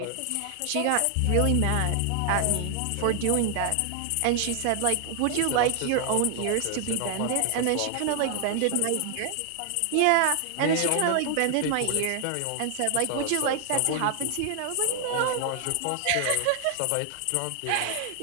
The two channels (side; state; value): both; different; correlation 0.00